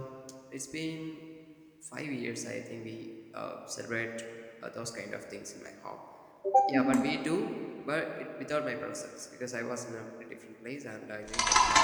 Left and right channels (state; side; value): identical; both; correlation 1.00